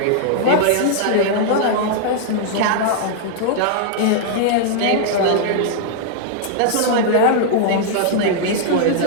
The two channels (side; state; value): both; different; correlation -0.01